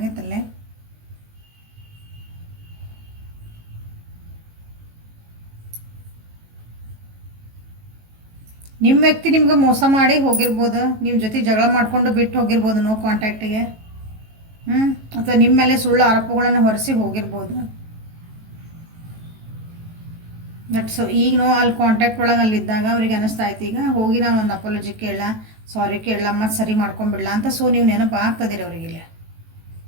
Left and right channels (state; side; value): late; left; 18 ms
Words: ನಿಮ್ಮ ವ್ಯಕ್ತಿ ನಿಮ್ಗೆ ಮೋಸ ಮಾಡಿ ಹೋಗಿರ್ಬೋದು, ನಿಮ್ಮ ಜೊತೆ ಜಗಳ ಮಾಡಿಕೊಂಡು ಬಿಟ್ಟು ಹೋಗಿರ್ಬೋದು ನೋ ಕಾಂಟ್ಯಾಕ್ಟಿಗೆ, ಅಥವಾ ನಿಮ್ಮ ಮೇಲೆ ಸುಳ್ಳು ಆರೋಪಗಳನ್ನು ಹೊರಿಸಿ ಹೋಗಿರ್ಬೋದು. ಬಟ್ ಸೊ ಈಗ ನೋ ಅಲ್ಲಿ ಕಾಂಟ್ಯಾಕ್ಟ್ ಒಳಗೆ ಅಲ್ಲಿದ್ದಾಗ ಅವ್ರಿಗೆ ಅನ್ನಿಸ್ತಾ ಇತ್ತು ಈಗ ಹೋಗಿ ನಾವು ಒಂದು ಅಪಾಲಜಿ ಕೇಳಲ್ಲ, ಸಾರಿ ಕೇಳಲ್ಲ, ಮತ್ತು ಸರಿ ಮಾಡ್ಕೊಂಬಿಡಲ್ಲ ಅಂತ. ಸೊ ನೀವು ನೆನಪು ಆಗ್ತದಿರಿ ಅವ್ರಿಗೆ, ಇಲ್ಲಿ